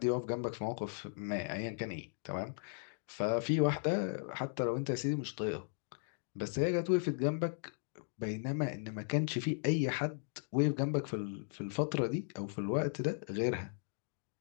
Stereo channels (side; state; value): right; silent; digital silence